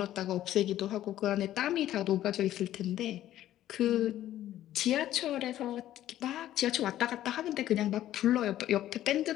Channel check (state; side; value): quieter; right; 13.0 dB